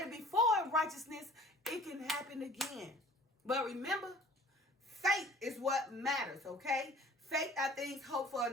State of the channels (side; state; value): both; normal; correlation 0.49